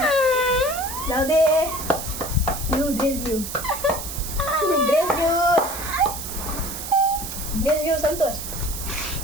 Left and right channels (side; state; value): right; noise; hiss, 7 dB below the sound